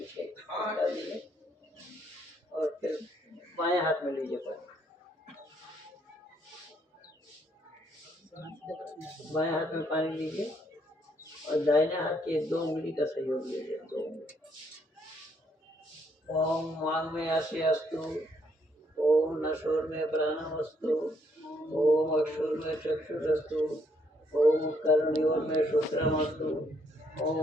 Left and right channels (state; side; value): normal; both; correlation 0.70